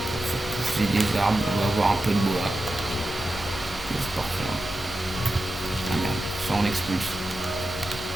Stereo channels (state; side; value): normal; both; correlation 0.91